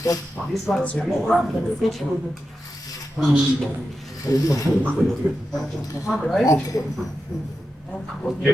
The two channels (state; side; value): normal; both; correlation 0.90